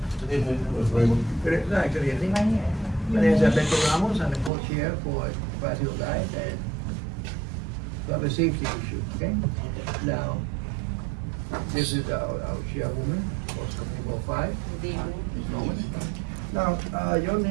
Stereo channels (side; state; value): left; drops out; at 4.5 s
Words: Raymond? Good evening. My name is Alberto Ramos, I'm the co-chair for Brazil Life and public safety issue, okay? Now, this is our chairwoman, for CB5. Ms. Norman. Now, your